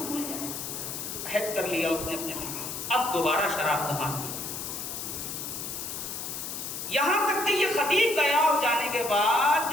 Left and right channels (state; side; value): noise; left; hiss, 6 dB below the sound